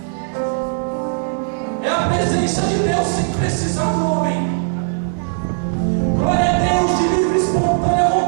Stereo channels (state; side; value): silent; left; digital silence